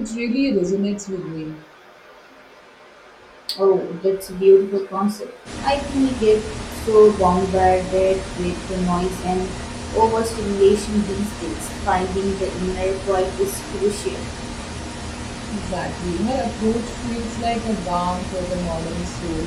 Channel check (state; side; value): identical; both; correlation 1.00